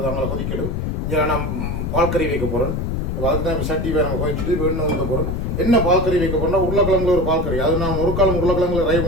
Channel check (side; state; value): left; noise; rumble, 1 dB below the sound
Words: அவங்கள கொதிக்கணும். இங்கே நான் பால் கறி வைக்க போகிறேன். அதுக்கு தான் இப்போ சட்டி வேறு நம்ம கொதிச்சுட்டு இப்போ எண்ணெய் ஊற்ற போகிறேன். என்ன பால் கறி வைக்க போகிறேன்னா உருளைக்கிழங்குல ஒரு பால் கறி. அது நான் ஒரு காலம் உருளைக்கிழங்குல ரை